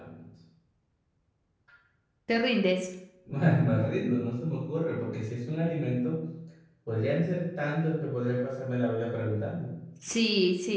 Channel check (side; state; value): both; identical; correlation 1.00